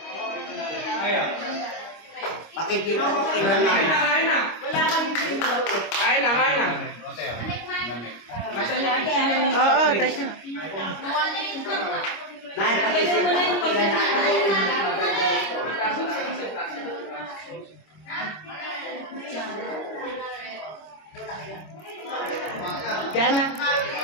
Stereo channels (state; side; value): late; right; 25 ms